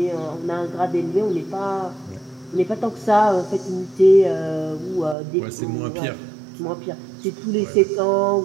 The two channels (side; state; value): left; drops out; at 5.2 s